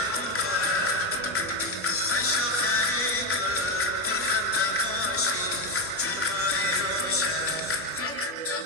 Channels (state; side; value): normal; both; correlation 0.10